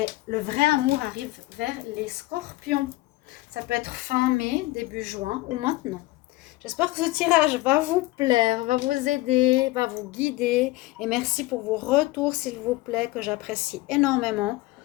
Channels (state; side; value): quieter; right; 19.1 dB